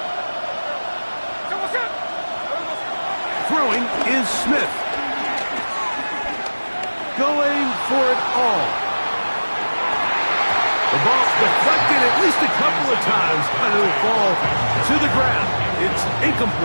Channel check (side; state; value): both; inverted; correlation -1.00